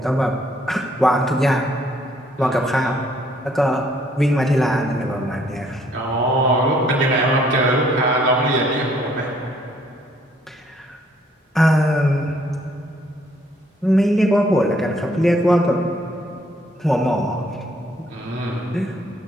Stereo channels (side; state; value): both; normal; correlation 0.66